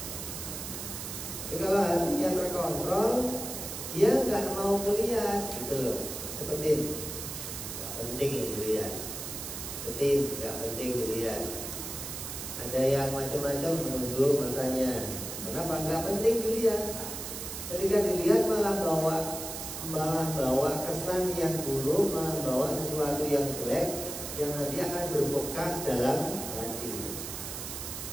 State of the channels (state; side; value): noise; right; hiss, 7 dB below the sound